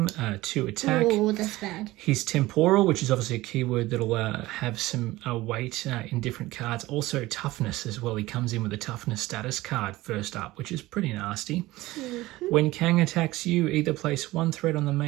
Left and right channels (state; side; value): quieter; left; 18.4 dB